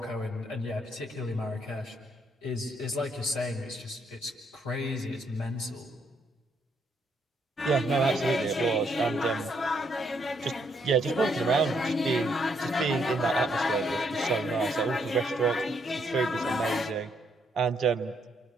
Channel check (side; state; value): both; normal; correlation 0.73